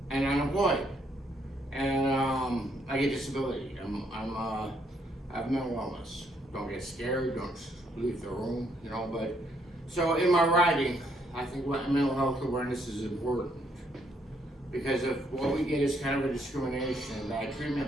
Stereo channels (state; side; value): normal; both; correlation 0.71